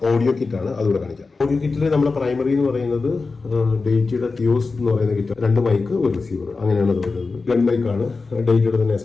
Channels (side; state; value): right; quieter; 4.1 dB